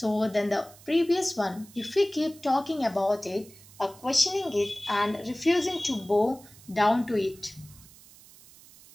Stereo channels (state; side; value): noise; right; hiss, 22 dB below the sound